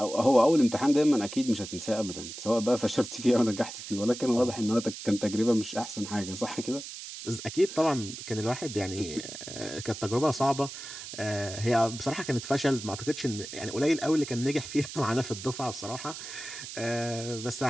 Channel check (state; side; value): noise; right; hiss, 10 dB below the sound